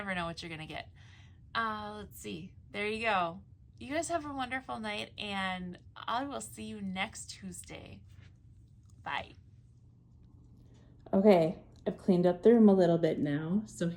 know what you're gonna get. Let's see. There you go. You guys have a wonderful night, and I will see you next Tuesday. Bye. Okay, I've cleaned up the room a little bit now, so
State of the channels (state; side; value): identical; both; correlation 1.00